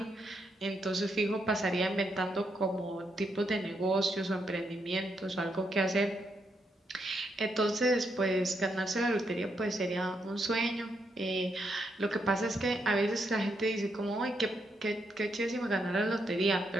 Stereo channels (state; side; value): normal; both; correlation 0.79